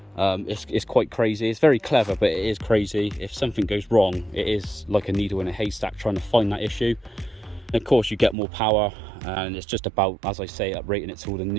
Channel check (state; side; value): drops out; left; at 8.3 s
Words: It's quite crazy. It's very clever, but it is crazy. If something goes wrong, it is like a needle in a haystack trying to find that issue. And of course you get more power, and it's just about, as I say, uprating it to all